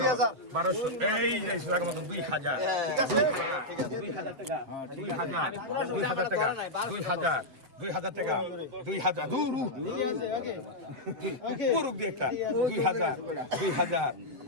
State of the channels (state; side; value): late; left; 7.5 ms